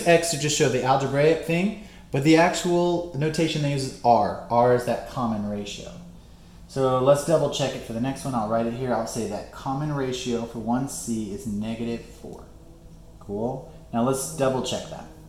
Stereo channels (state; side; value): identical; both; correlation 1.00